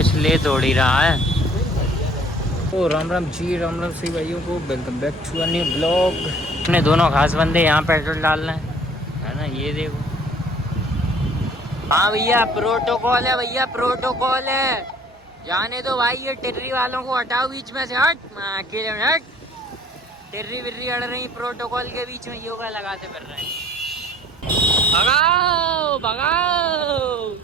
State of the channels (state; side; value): normal; both; correlation 0.54